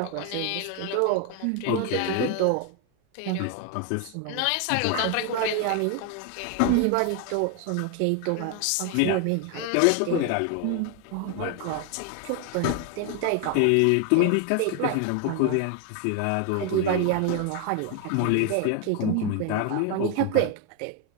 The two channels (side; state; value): both; different; correlation 0.01